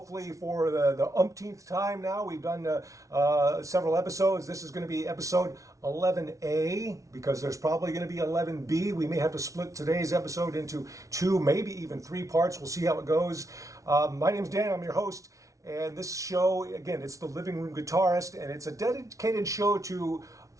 for the umpteenth time now. We've done several episodes. This is going to be episode 11A because there's probably going to be 11B. We may have to split today's episode into two, maybe even three parts. We'll see how it goes. My name's Dan. I'm your host. And this show, again, it's the Living Room Guitarist, and it's a dedicated show to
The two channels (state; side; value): late; left; 0.16 ms